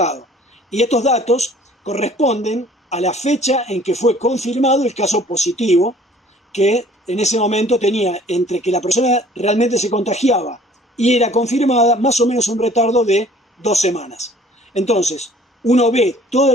Y estos datos corresponden a la fecha en que fue confirmado el caso positivo, que en ese momento tenía entre que la persona realmente se contagiaba y era confirmada más o menos un retardo de 2 semanas. Entonces, uno ve toda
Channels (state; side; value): normal; both; correlation 0.53